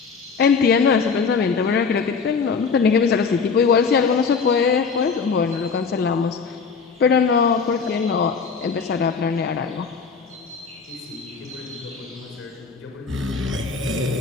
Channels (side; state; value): right; quieter; 5.4 dB